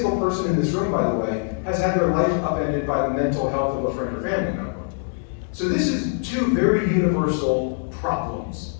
person in this room, by the way, has had their life upended by the mental health of a friend or family member. So this is two very universal problems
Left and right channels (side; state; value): right; silent; 63 dB below the other